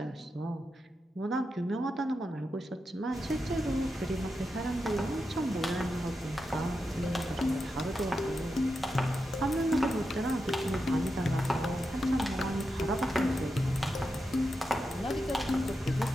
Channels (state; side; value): normal; both; correlation 0.88